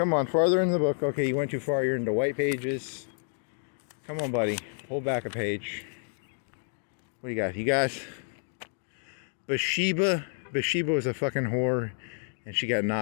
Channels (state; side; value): silent; right; 58 dB below the other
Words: on, farther in the book. Okay, you went too far. You're into white pages. Come on, buddy. Pull back a page. What do you got? You guys? Bathsheba. Bathsheba was a fucking whore, and she got